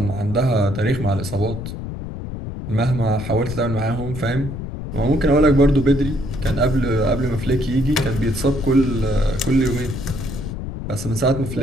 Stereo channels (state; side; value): noise; left; rumble, 7 dB below the sound